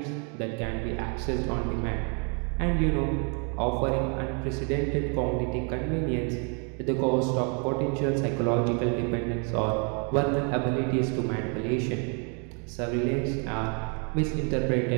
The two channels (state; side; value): quieter; left; 37.7 dB